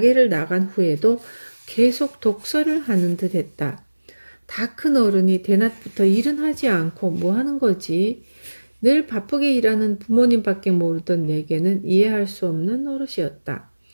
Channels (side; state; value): both; inverted; correlation -1.00